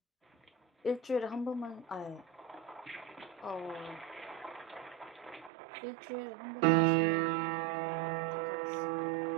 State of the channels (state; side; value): drops out; left; at 5.5 s